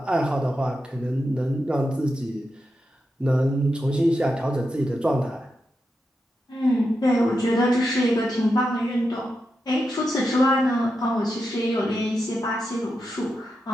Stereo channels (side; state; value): both; normal; correlation 0.87